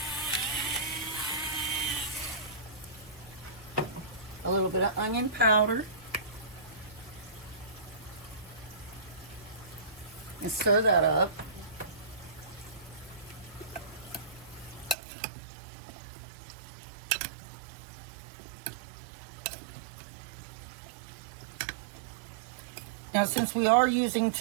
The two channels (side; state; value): left; drops out; at 15.0 s